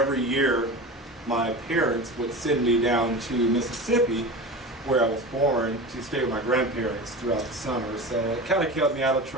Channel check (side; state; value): both; normal; correlation 0.30